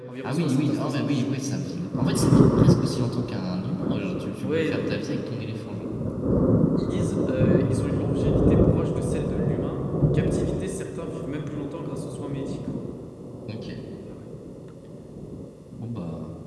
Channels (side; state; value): both; identical; correlation 1.00